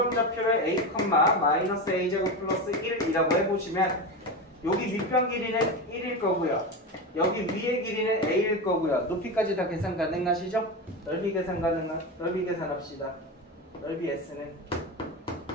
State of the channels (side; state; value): both; normal; correlation 0.20